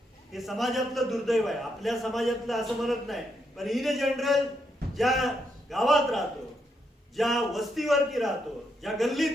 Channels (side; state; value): both; normal; correlation 0.79